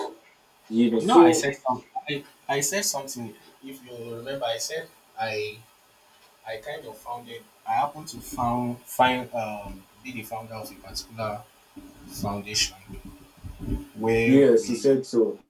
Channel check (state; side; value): identical; both; correlation 1.00